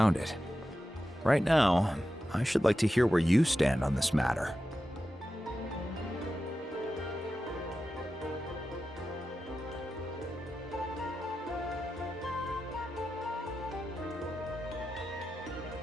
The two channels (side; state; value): both; normal; correlation 0.91